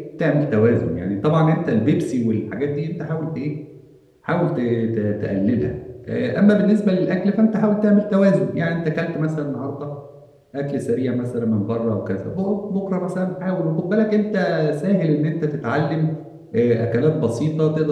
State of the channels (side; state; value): both; identical; correlation 1.00